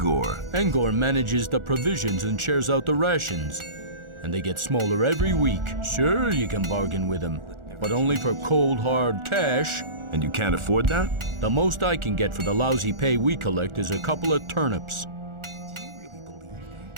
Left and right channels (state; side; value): late; left; 1.4 ms